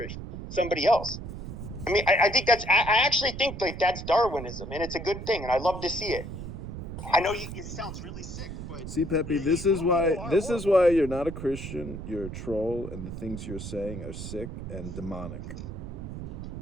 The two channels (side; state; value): right; noise; rumble, 8 dB below the sound